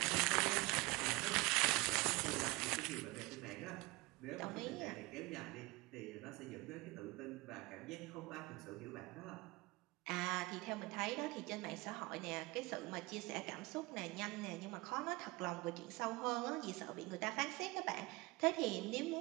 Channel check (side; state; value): left; quieter; 23.3 dB